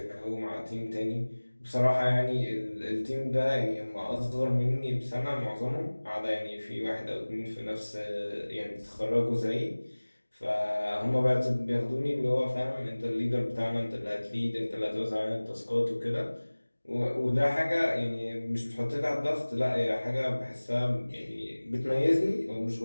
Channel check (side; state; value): both; inverted; correlation -1.00